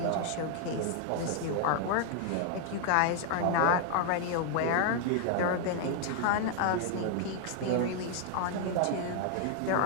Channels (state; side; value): different; both; correlation 0.00